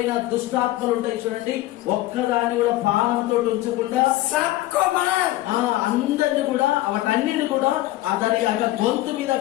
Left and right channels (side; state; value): right; quieter; 16.7 dB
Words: దుష్టాత్మలు ఉంటాయి చూడండి, ఒక్కదాన్ని కూడా ప్రాణంతో ఉంచకుండా सबको मार। ఆ అందరిని కూడా వాటన్నిటిని కూడా దాని యొక్క గొంతు మీద